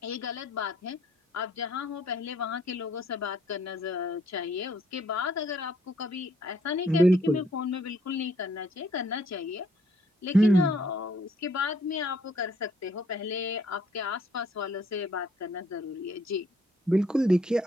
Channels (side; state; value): both; normal; correlation 0.65